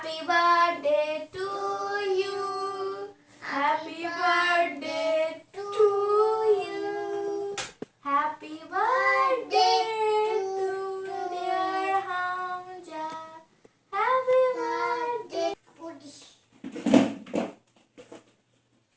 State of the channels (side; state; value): both; identical; correlation 1.00